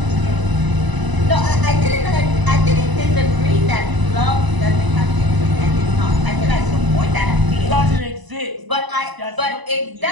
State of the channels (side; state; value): left; late; 1.0 ms